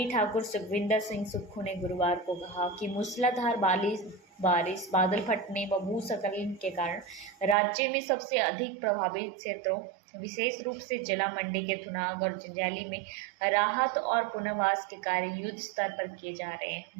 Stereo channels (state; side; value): drops out; left; at 7.6 s